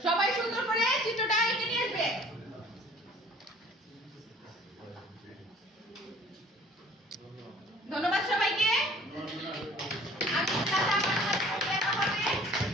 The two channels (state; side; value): normal; both; correlation 0.51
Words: সবাই সুন্দর করে চিত্রটা এঁকে নিয়ে আসবে। ধন্যবাদ সবাইকে। আমি দেখা হবে।